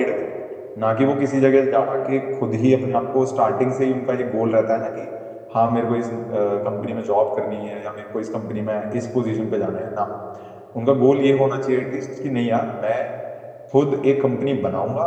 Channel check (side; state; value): both; identical; correlation 1.00